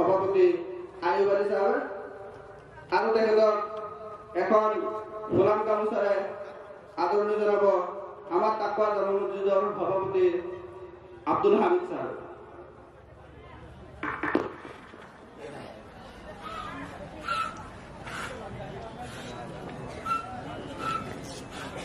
আইয়ুব আলী সাহেব আৰু তেখেতক এখন গোলাম গামোচাৰে আদৰণি জানাবো আমার তাকওয়া জামা মসজিদৰ সভাপতি আব্দুল হামিদ সাহেব।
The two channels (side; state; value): both; identical; correlation 1.00